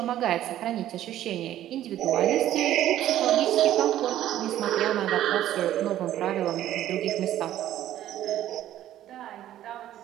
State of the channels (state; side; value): quieter; left; 12.6 dB